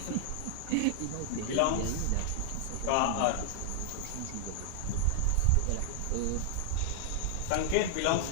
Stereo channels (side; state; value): both; different; correlation 0.00